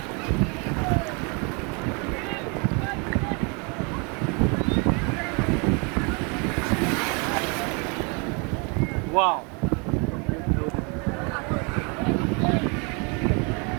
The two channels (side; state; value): left; quieter; 33.2 dB